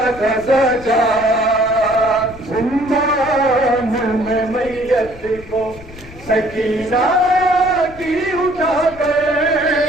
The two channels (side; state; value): left; noise; rumble, 18 dB below the sound